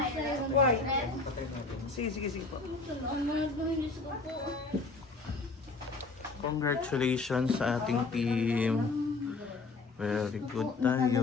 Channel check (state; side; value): quieter; right; 3.8 dB